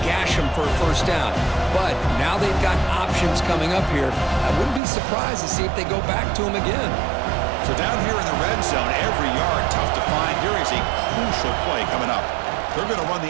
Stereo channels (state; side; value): drops out; left; at 4.8 s